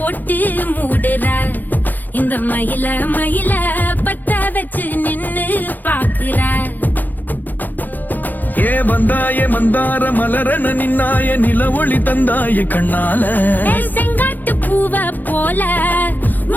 மூடுற இந்த மயில மயில பத்த வச்சு நின்னு பாக்குற ஏ வந்தாய மந்தார மலரன நின்னாய நில ஒளி தந்தாய கண்ணால செங்காட்டு பூவ போல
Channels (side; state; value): right; late; 0.085 ms